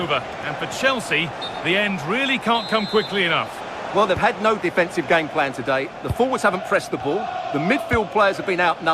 and for Chelsea, the end really can't come quickly enough. Well, they've had no defensive game plan today. The forwards haven't pressed the ball, the midfield players have been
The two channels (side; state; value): both; identical; correlation 1.00